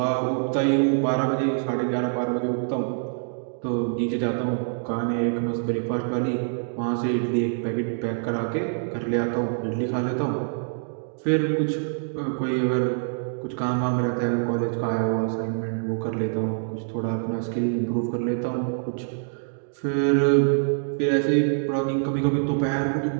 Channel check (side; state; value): left; silent; digital silence